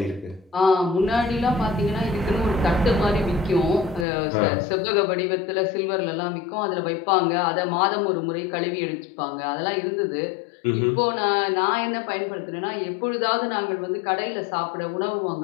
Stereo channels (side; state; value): right; drops out; at 4.0 s